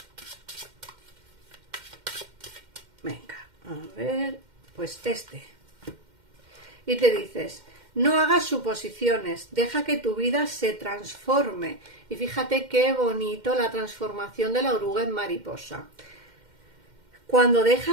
Venga, a ver, pues este. Y te dices: no hagas suposiciones, deja que tu vida se transforme. Y fíjate qué bonito la transformación de la oruga en mariposa. Cuando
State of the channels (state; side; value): late; left; 2.1 ms